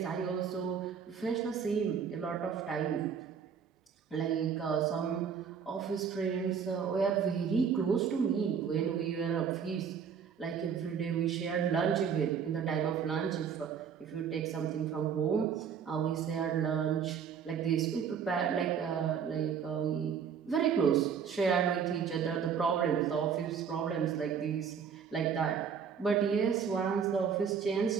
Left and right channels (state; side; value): quieter; left; 7.1 dB